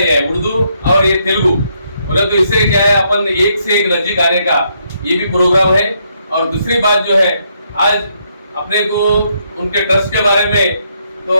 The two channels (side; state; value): both; inverted; correlation -0.75